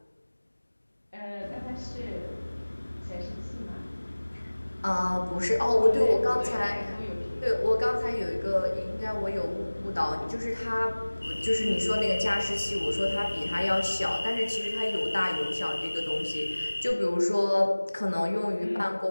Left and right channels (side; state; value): both; inverted; correlation -1.00